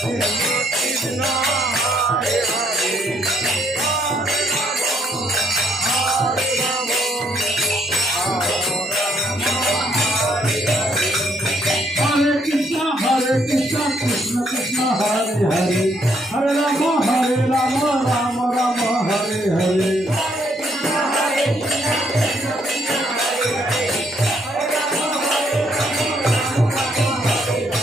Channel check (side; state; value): both; normal; correlation 0.71